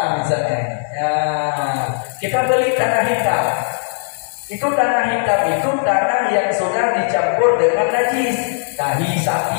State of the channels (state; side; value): silent; right; digital silence